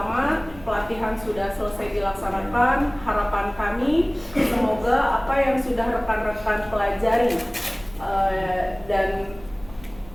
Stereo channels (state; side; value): noise; right; rumble, 20 dB below the sound